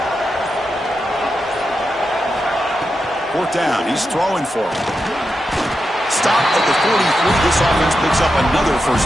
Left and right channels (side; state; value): both; normal; correlation 0.88